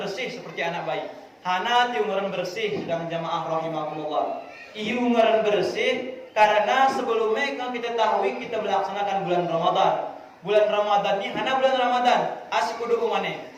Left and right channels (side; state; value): both; identical; correlation 1.00